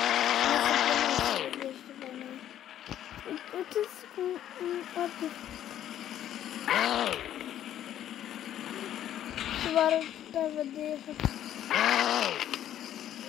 Și vă arăt pe vedere.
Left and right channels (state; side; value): quieter; right; 11.3 dB